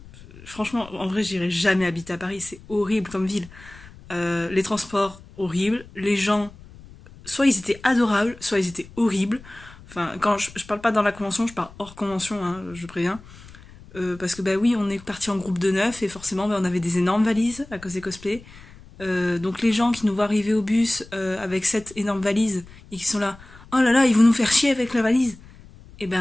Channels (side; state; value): left; noise; rumble, 20 dB below the sound